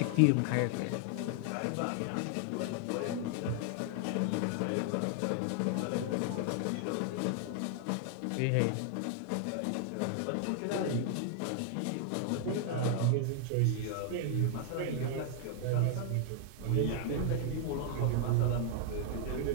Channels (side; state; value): both; different; correlation 0.00